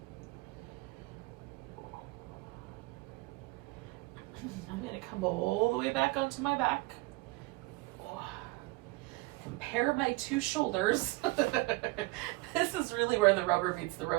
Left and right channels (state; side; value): quieter; left; 22.8 dB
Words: I'm going to come all the way back onto my back. Compare my 2 shoulders. This is really where the rubber meets the